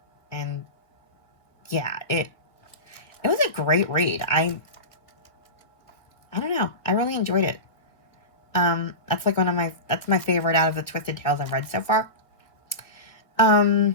And yeah, it was a great read. I don't know. I really enjoyed it. That's like that's my favorite out of the Twisted Tales I've read so far. So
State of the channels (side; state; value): right; late; 1.7 ms